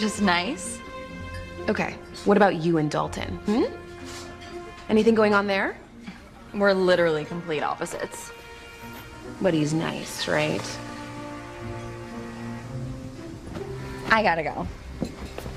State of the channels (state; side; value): identical; both; correlation 1.00